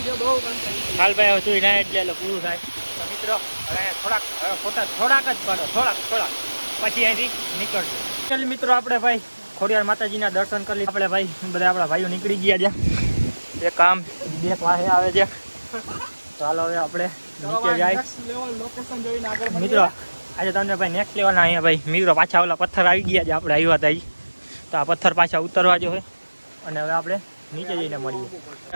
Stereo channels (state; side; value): inverted; both; correlation -1.00